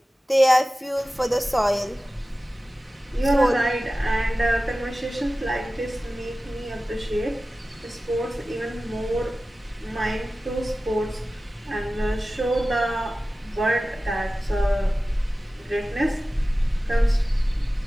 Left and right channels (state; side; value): normal; both; correlation 0.96